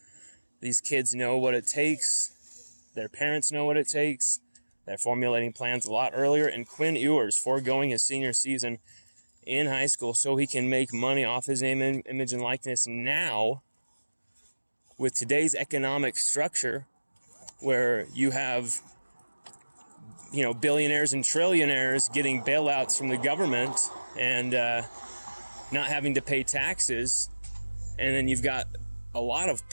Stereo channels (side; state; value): both; inverted; correlation -1.00